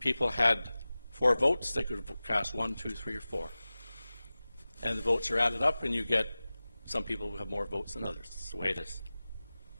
had 4 votes. They could cast 1, 2, 3, or 4. And the votes are added up, and you get some people who have more votes than others. That's the way it is.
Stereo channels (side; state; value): both; inverted; correlation -0.97